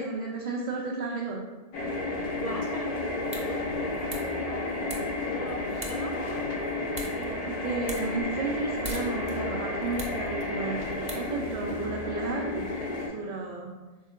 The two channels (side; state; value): right; late; 1.7 ms